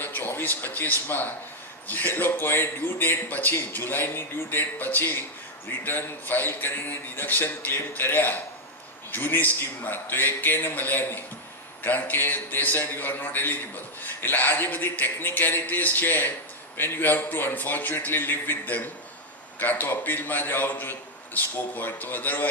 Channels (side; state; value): both; normal; correlation 0.00